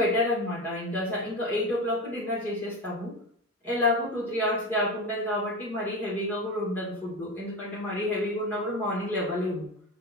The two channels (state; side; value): normal; both; correlation 0.23